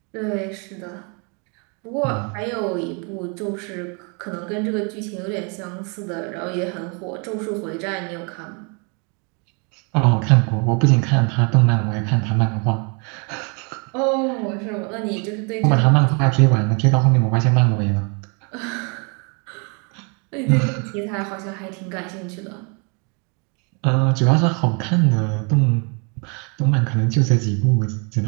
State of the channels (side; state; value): left; quieter; 34.4 dB